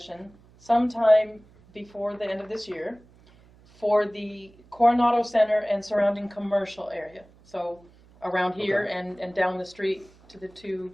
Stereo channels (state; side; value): noise; right; hum, 27 dB below the sound